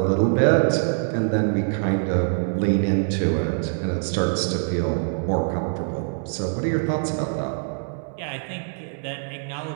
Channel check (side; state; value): left; silent; digital silence